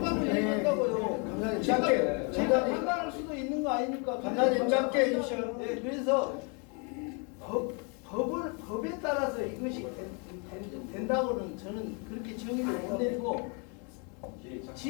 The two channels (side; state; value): right; quieter; 35.4 dB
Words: 얘기한다고요. 제가 판단할 수도 있는 거 아닙니까? 감사님 짧게 해주셔요. 네, 그래서 법에 따라서 이것이 된다고는 저는 그렇게 정의를 못 내리고